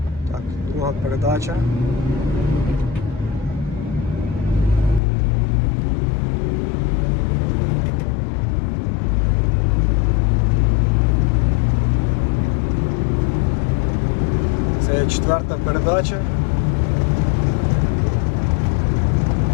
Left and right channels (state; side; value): drops out; right; at 5.0 s